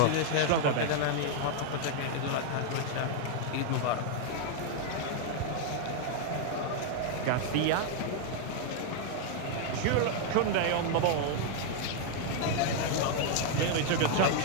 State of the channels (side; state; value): both; different; correlation 0.00